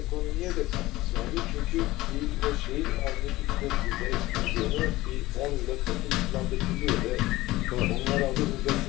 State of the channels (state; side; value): quieter; right; 18.1 dB